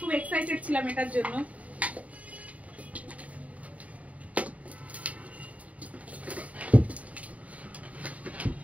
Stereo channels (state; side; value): late; left; 0.068 ms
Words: এক্সাইটেড ছিলাম এটার জন্য।